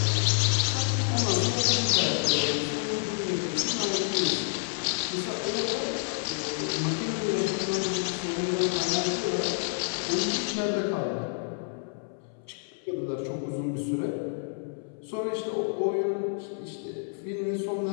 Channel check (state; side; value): silent; right; 59 dB below the other